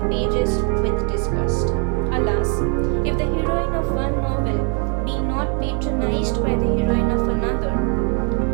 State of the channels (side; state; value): left; quieter; 39.8 dB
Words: pages with disgust. Alas, if the heroine of one novel be not patronized by the heroine of another,